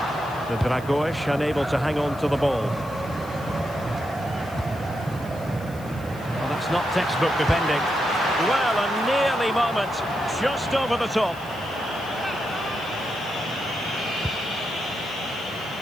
The Dragoish unable to hang on to the ball. It's not textbook defending. Well, a nearly moment, just over the top.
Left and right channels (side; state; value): left; noise; hiss, 22 dB below the sound